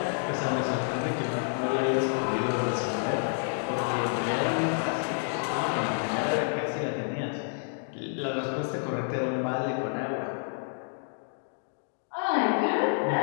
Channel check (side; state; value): right; silent; 59 dB below the other